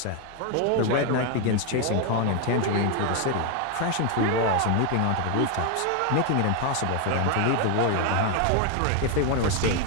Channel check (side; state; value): both; different; correlation 0.01